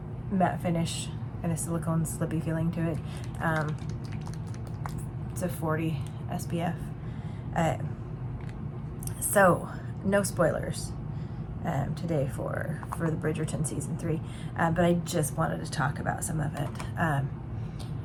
matte finish and a silicone slippy feeling to it. It's a 40 SPF. So, no spoilers today for the Bridgerton Season 3, but I just wanted to talk about some of it.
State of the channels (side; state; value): both; identical; correlation 1.00